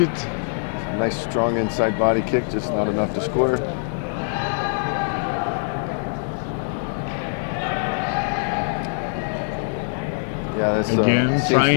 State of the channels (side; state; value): right; silent; digital silence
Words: it. Nice strong inside body kick, just not enough to score. Yeah, this seems